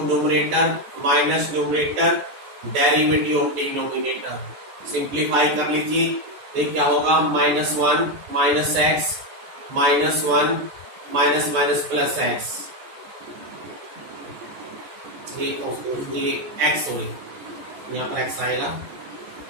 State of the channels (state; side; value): late; left; 14 ms